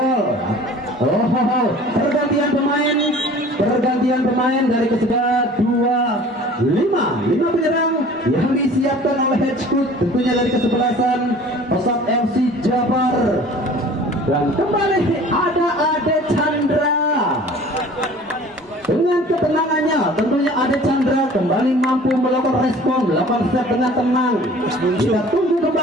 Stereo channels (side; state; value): both; normal; correlation 0.46